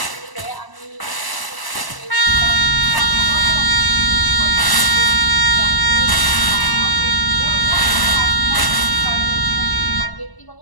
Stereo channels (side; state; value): right; late; 1.0 ms